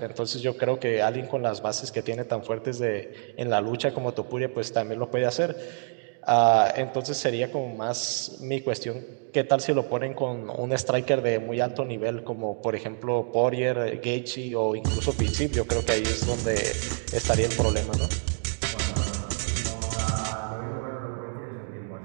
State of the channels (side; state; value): left; silent; digital silence